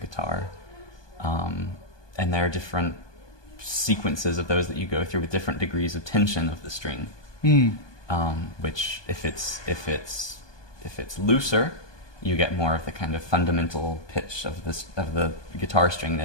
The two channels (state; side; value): late; right; 1.2 ms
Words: and there are different sequences of those that you go through with different degrees of tension of the string. Which, if it's looser, you get more of the kind of fundamental pitch of the guitar string, and